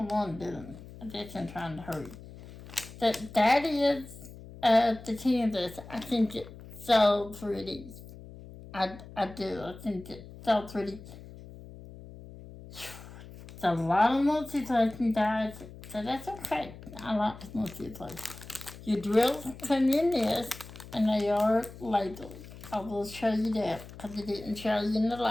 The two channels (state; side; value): noise; left; hum, 16 dB below the sound